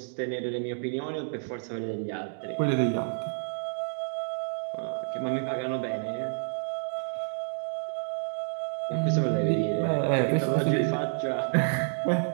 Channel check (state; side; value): silent; left; digital silence